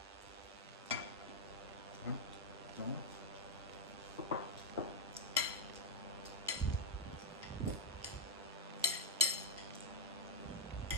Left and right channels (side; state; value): both; normal; correlation 0.02